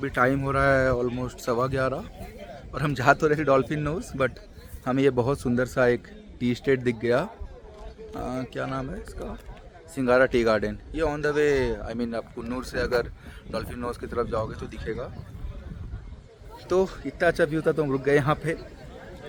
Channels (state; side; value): identical; both; correlation 1.00